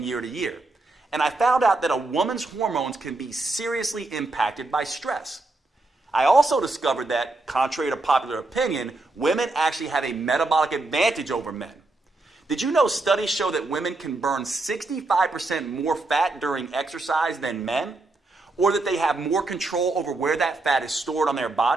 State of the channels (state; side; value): quieter; left; 3.1 dB